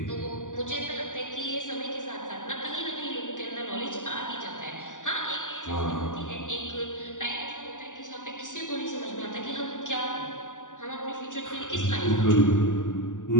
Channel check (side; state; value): right; late; 0.87 ms